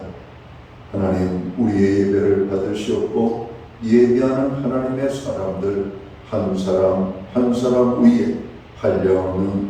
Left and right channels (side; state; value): both; identical; correlation 1.00